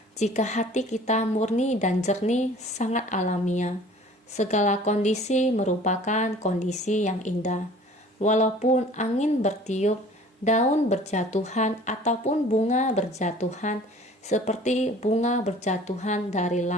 Jika hati kita murni dan jernih, sangat alamiah. Segala kondisi merupakan kondisi yang indah. Walaupun angin bertiup, daun berjatuhan, ataupun bunga berjatuhan, seperti bunga berjatuhan dari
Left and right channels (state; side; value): normal; both; correlation 0.49